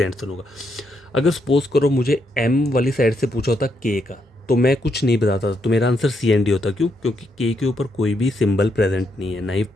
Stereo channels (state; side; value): normal; both; correlation 0.78